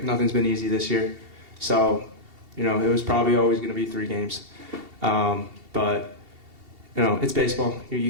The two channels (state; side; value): late; left; 2.7 ms